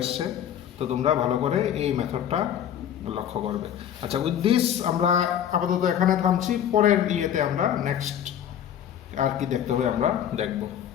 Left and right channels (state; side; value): quieter; right; 9.8 dB